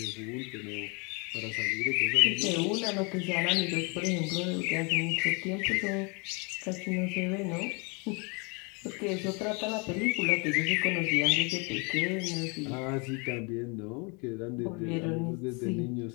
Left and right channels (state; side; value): quieter; right; 31.9 dB